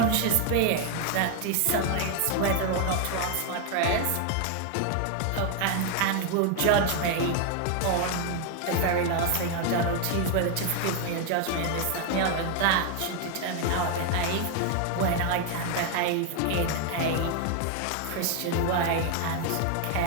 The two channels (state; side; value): different; both; correlation 0.01